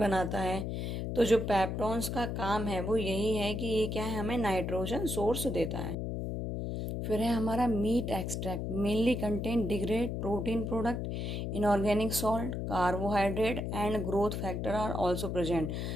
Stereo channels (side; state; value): left; noise; hum, 3 dB below the sound